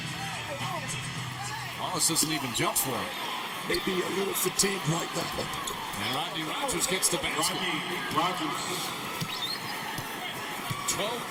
Wallace doesn't even jump for it. Maybe a little fatigued like that. And Rodney Rodgers gets the basket.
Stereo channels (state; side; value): identical; both; correlation 1.00